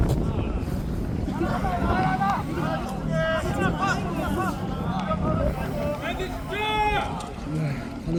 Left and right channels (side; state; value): both; identical; correlation 1.00